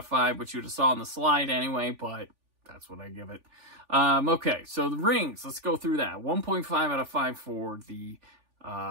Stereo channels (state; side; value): late; left; 3.4 ms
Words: 5, which you would have saw on the slide anyway, but that's what I give it. Okay, so The Rings, let's go through that. 1.5 out of 5 for the